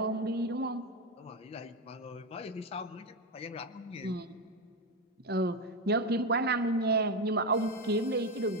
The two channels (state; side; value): normal; both; correlation 0.11